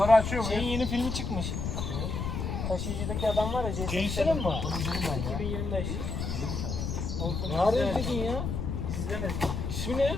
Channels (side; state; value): left; noise; rumble, 3 dB below the sound